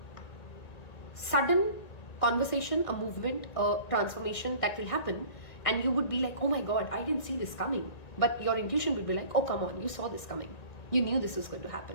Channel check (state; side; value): late; right; 1.9 ms